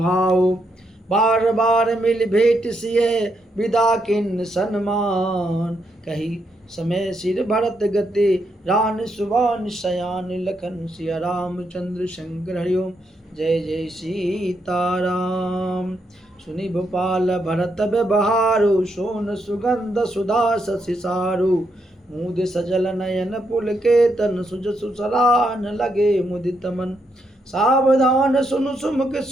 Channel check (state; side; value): normal; both; correlation 0.79